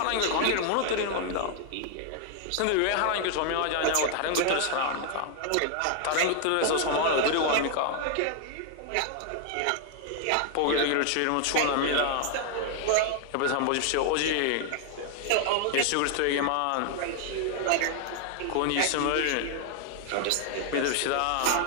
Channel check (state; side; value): different; both; correlation 0.00